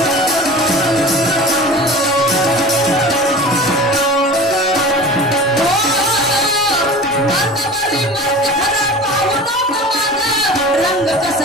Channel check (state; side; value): normal; both; correlation 0.37